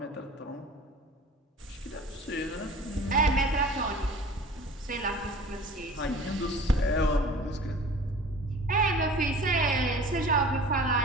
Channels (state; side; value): normal; both; correlation 0.43